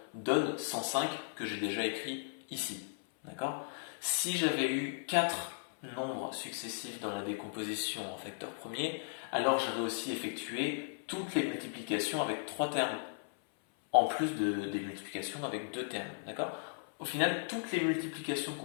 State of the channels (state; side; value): silent; right; 54 dB below the other